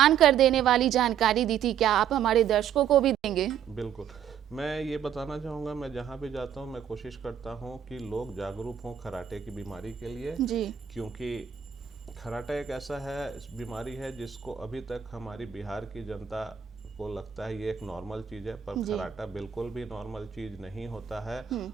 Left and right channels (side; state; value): left; quieter; 8.9 dB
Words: कर देने वाली जानकारी दी थी, क्या आप हमारे दर्शकों को भी देंगे? बिल्कुल, मैं ये बताना चाहूँगा, मैं जहाँ भी जाता हूँ मैं कोशिश करता हूँ कि लोग जागरूक हों खर्राटे की बीमारी के लिए जी। क्योंकि खर्राटा एक ऐसा है बीमारी है जिसको अभी तक हमारी बिहार की जनता को लगता है ये एक नॉर्मल चीज़ है, पर खर्राटा बिल्कुल भी नॉर्मल चीज़ नहीं होता है।